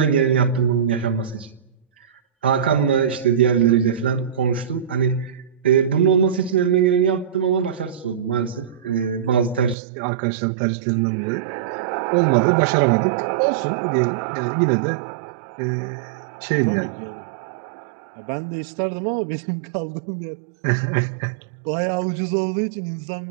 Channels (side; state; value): left; drops out; at 9.8 s